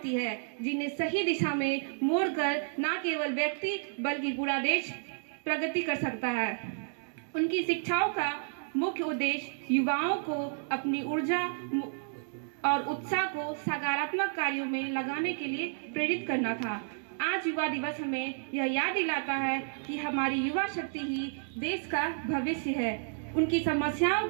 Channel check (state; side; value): silent; left; digital silence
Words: है, जिन्हें सही दिशा में मोड़कर न केवल व्यक्ति बल्कि पूरा देश प्रगति कर सकता है। उनकी शिक्षाओं का मुख्य उद्देश्य युवाओं को अपनी ऊर्जा और उत्साह को सकारात्मक कार्यों में लगाने के लिए प्रेरित करना था। आज युवा दिवस हमें यह याद दिलाता है कि हमारी युवा शक्ति ही देश का भविष्य है। उनकी समस्याओं